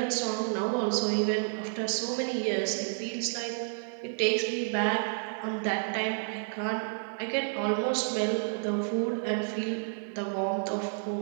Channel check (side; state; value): left; silent; digital silence